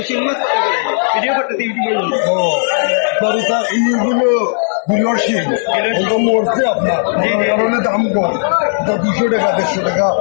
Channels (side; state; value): right; silent; digital silence